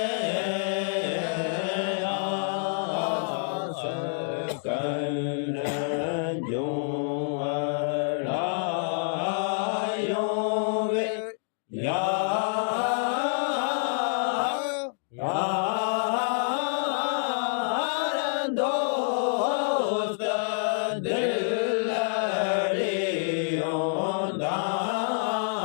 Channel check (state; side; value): silent; right; digital silence